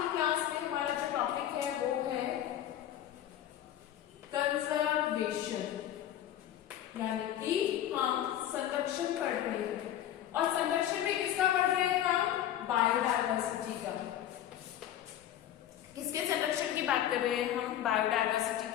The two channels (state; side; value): quieter; right; 11.6 dB